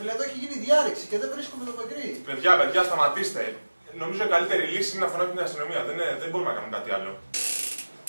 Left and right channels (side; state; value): both; inverted; correlation -1.00